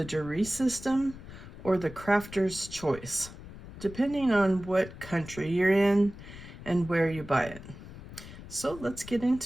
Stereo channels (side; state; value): left; noise; rumble, 15 dB below the sound